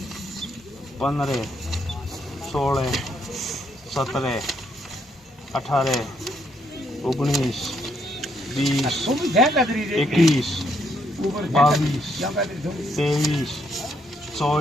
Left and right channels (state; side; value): normal; both; correlation 0.74